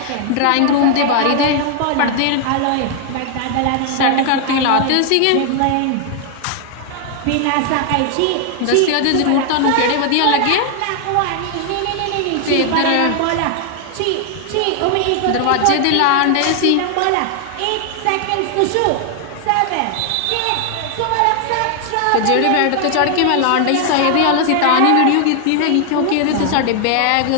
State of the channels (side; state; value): both; different; correlation 0.00